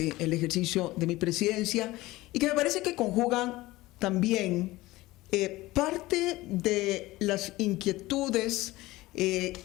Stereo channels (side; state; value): right; quieter; 18.9 dB